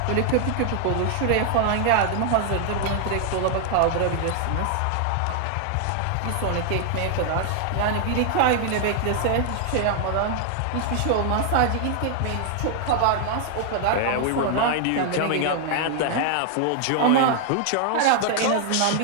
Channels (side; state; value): both; different; correlation 0.00